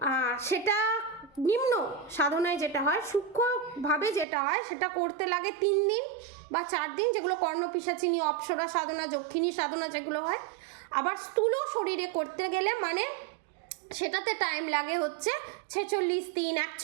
সেটা নিম্ন সাধনায় যেটা হয়, সূক্ষ্মভাবে যেটা হয়, সেটা করতে লাগে 3 দিন বা 4 দিন, যেগুলো কর্ণপিশাচিনী, অপ্সরা সাধনা, যক্ষিণী সাধনা যেগুলো হয়। আবার স্থূল শরীরে করতে গেলে মানে সেটাতে টাইম লাগে হচ্ছে 46 দিন,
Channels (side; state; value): left; drops out; at 4.2 s